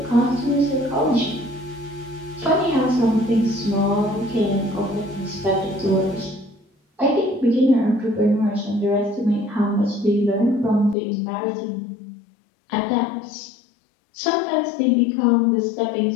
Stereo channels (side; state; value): right; drops out; at 11.0 s